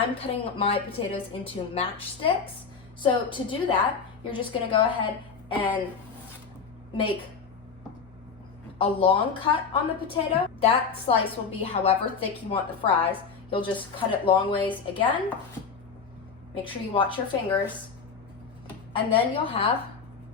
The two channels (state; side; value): quieter; right; 5.6 dB